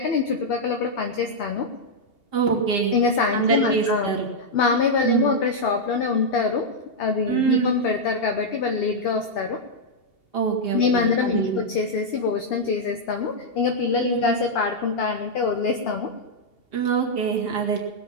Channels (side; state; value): right; late; 2.8 ms